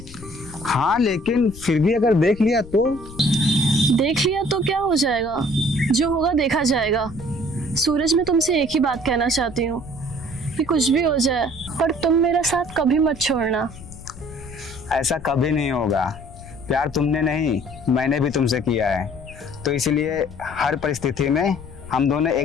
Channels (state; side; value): noise; left; rumble, 17 dB below the sound